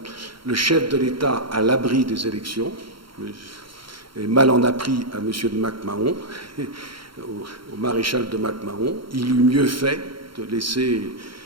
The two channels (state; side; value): late; left; 0.73 ms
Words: chef de l'État à l'abri des élections. Et mal en a pris à M. de Mac-Mahon, au maréchal de Mac-Mahon. Il eût mieux fait de laisser